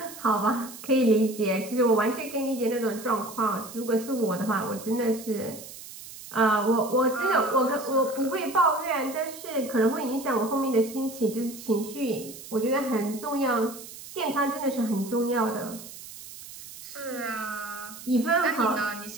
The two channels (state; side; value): noise; right; hiss, 14 dB below the sound